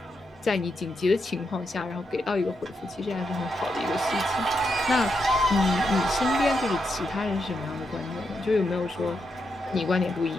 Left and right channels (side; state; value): both; normal; correlation 0.83